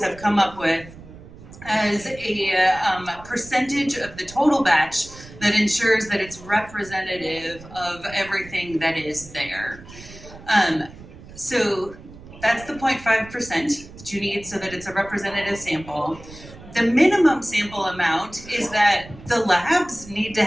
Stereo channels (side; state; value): right; noise; rumble, 18 dB below the sound